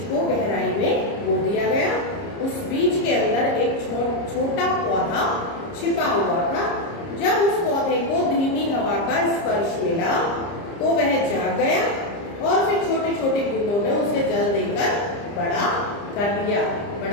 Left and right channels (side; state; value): right; late; 30 ms